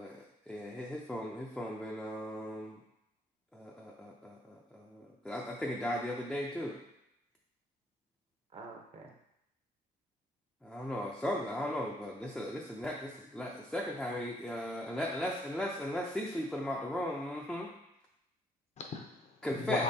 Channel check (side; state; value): both; normal; correlation 0.69